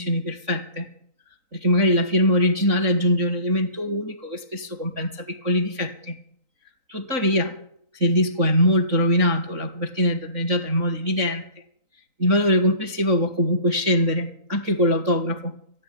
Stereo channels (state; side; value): late; left; 3.9 ms